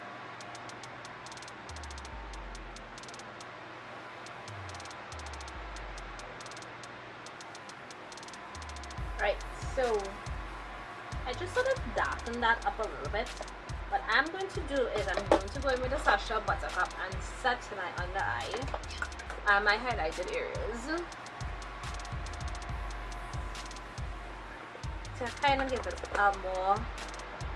Right, so I just sort of darken that up a little bit. What I'm going to do is I'm going to go in with the Sacha Buttercup and set my under eye and my highlighted areas to kind of give it a more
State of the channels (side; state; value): both; identical; correlation 1.00